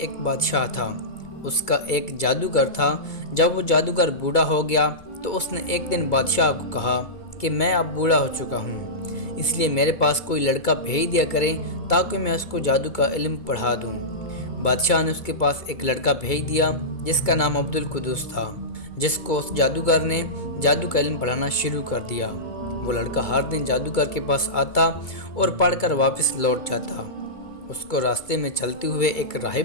بادشاہ تھا، اس کا ایک جادوگر تھا۔ جب وہ جادوگر بوڑھا ہو گیا تو اس نے ایک دن بادشاہ کو کہا کہ میں اب بوڑھا ہو چکا ہوں، اس لیے میرے پاس کوئی لڑکا بھیج دیا کرے تاکہ میں اس کو جادو کا علم پڑھا دوں۔ بادشاہ نے اس کے پاس ایک لڑکا بھیج دیا جس کا نام عبد القدوس تھا، جس کو اس جادوگر نے جادو کا علم پڑھانا شروع کر دیا۔ وہ لڑکا ہر دن جادوگر کے پاس آتا اور پڑھ کر واپس لوٹ جاتا۔ اس کو راستے میں چلتے ہوئے ایک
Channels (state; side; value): late; right; 2.3 ms